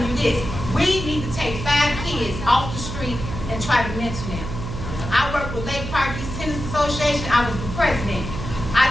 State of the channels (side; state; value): right; noise; hum, 7 dB below the sound